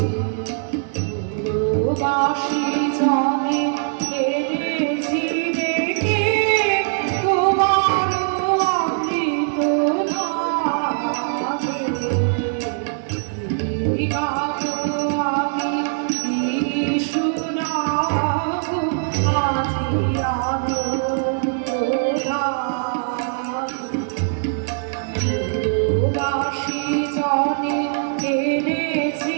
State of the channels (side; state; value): left; silent; 59 dB below the other